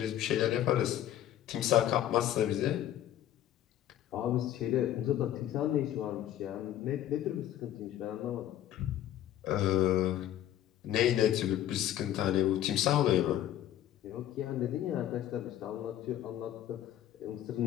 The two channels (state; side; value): quieter; right; 12.1 dB